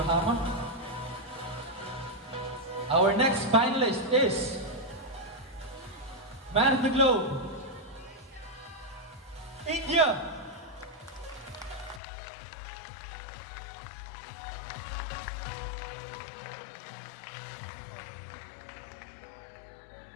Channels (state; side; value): drops out; right; at 12.0 s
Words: Our next finalist is Man of the Globe, India.